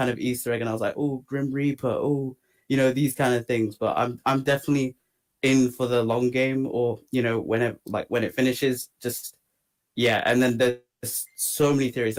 of Easter egg, and I was like, oh, Grim Reaper, oh, these kind of things. But I'm definitely in for the long game, or when it finishes, just yeah. And then there's so many theories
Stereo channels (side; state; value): both; identical; correlation 1.00